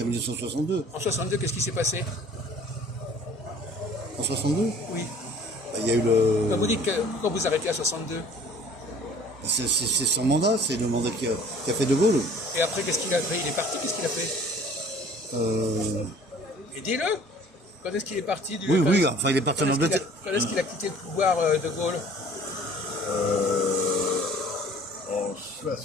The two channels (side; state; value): both; normal; correlation 0.51